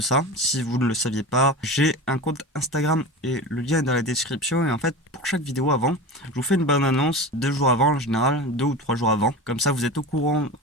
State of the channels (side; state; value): both; normal; correlation 0.30